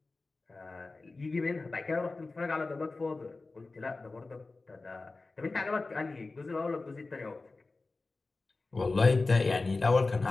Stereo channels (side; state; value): right; quieter; 3.5 dB